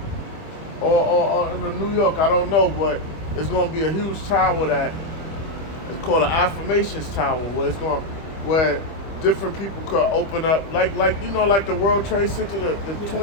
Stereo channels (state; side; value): late; right; 25 ms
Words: or in New York. I don't know, but it's going to be a huge tower that it's called an affirmations tower, where different people could open up, like you know, like the World Trade Center, the